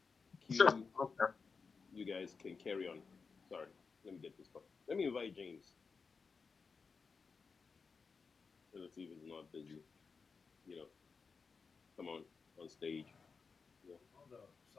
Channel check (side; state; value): right; quieter; 5.0 dB